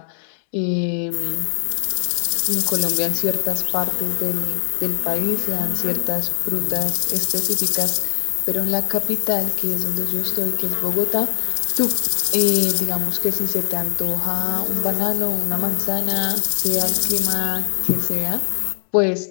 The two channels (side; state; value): right; silent; 65 dB below the other